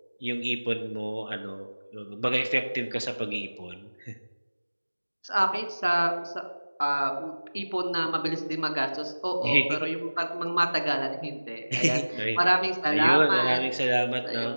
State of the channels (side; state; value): both; inverted; correlation -1.00